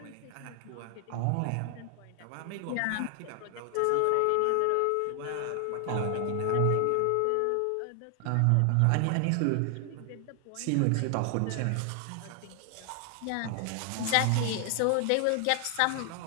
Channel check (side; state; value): both; different; correlation 0.00